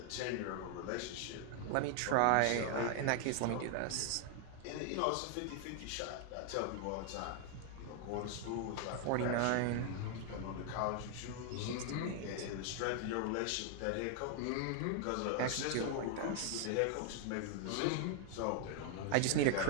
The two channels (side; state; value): both; different; correlation 0.00